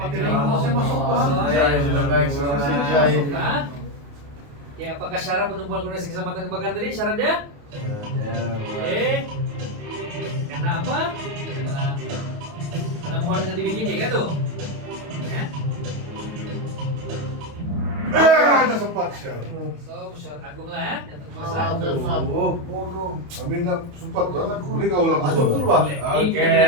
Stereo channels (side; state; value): left; late; 28 ms